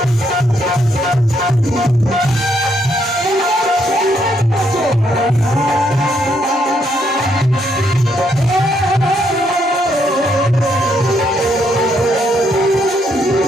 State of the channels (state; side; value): normal; both; correlation 0.74